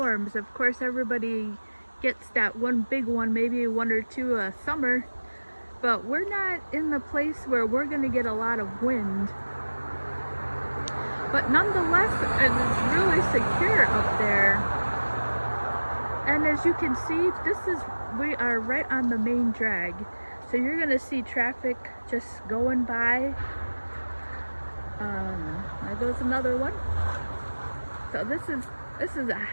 Of course, everybody gets that one big one, maybe one or two a summer, but we're not in the place where we're going to get a lot of wind. But nonetheless, it's really secure up there. And as you can see, we are right on the main drag. So you're gonna see traffic just going by There goes another one. So this is a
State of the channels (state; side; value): inverted; both; correlation -1.00